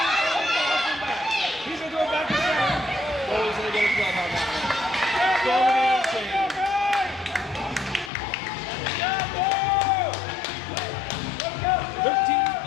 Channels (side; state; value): right; drops out; at 8.1 s